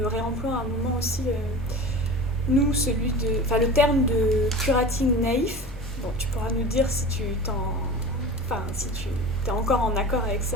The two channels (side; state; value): both; normal; correlation 0.34